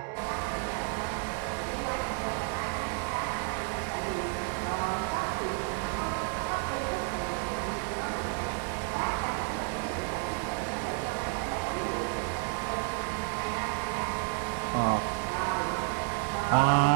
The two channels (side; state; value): left; quieter; 39.6 dB